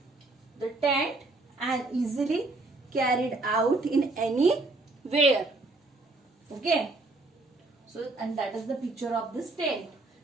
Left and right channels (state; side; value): quieter; left; 3.2 dB